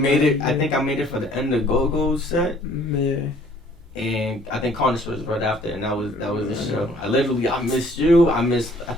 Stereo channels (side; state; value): both; normal; correlation 0.58